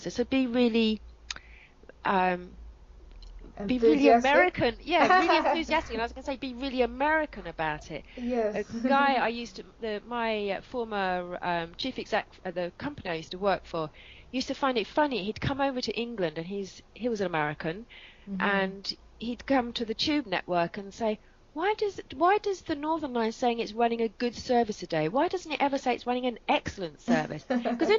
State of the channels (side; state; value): both; identical; correlation 1.00